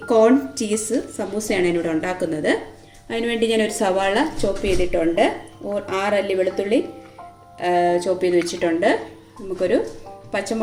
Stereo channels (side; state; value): both; identical; correlation 1.00